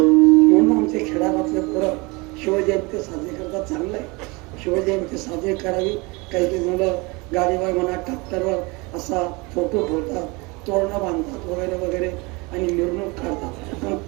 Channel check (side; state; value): left; quieter; 26.4 dB